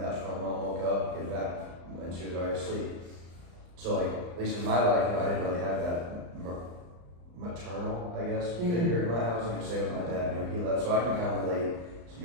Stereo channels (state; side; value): late; left; 34 ms